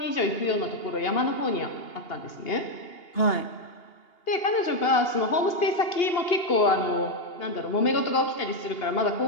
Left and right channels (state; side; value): late; right; 2.8 ms